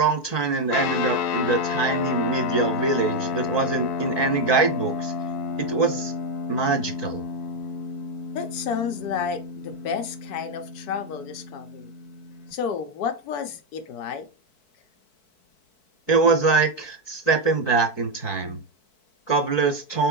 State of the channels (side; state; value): right; late; 4.6 ms